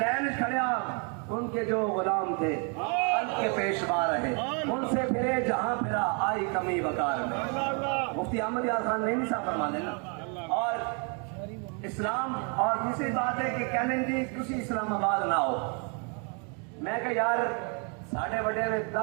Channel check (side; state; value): left; quieter; 37.5 dB